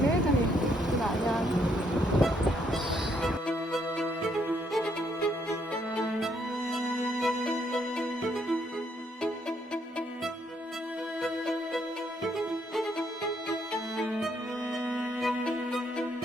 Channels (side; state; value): both; normal; correlation 0.72